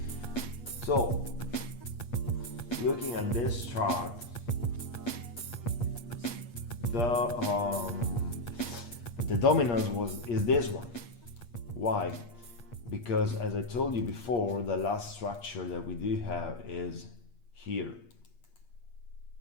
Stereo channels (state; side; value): late; right; 8.5 ms